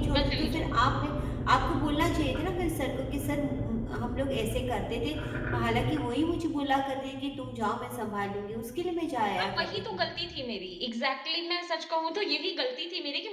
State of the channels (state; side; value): identical; both; correlation 1.00